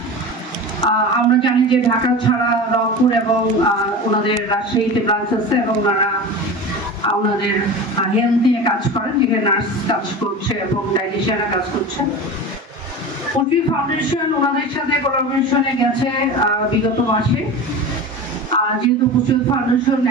আমরা জানি যে ঢাকা ছাড়া রংপুর এবং ওনাদের রাজশাহীতে ব্রাঞ্চ আছে এবং ওনারা ওনাদের হেলথ নিয়ে কাজ করেন, যেখানে নার্স কাজ করছে এবং ডায়েটিশিয়ানরা কাজ করছে। পুষ্টিবিদ ফাউন্ডেশন ওনাদের সাথে কোলাবোরেশনে গেছে বিগত মাসে। যেহেতু পুষ্টিবিদ ফাউন্ডেশন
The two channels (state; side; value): normal; both; correlation 0.30